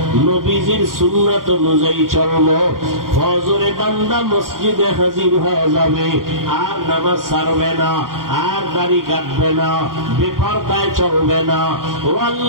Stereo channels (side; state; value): left; late; 0.91 ms